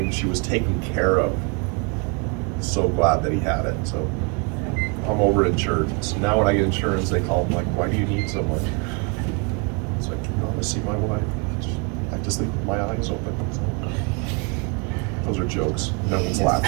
she was taken care of, so glad that he had it. So I'm over insured. So now when I get insurance, they call them like, "Why do you need so much?" It's like, "You want to see my wife? I just leave my eyes open." So, those are jokes. No one's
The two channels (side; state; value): left; quieter; 33.3 dB